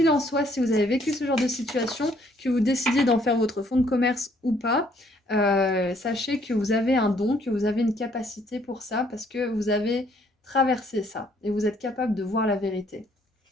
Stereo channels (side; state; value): both; normal; correlation 0.65